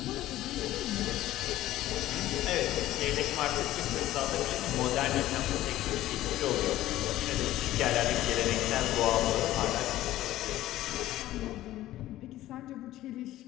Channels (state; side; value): quieter; right; 14.8 dB